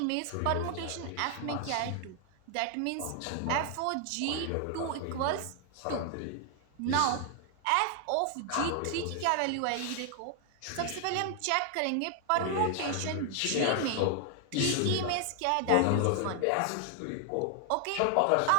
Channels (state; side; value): different; both; correlation 0.00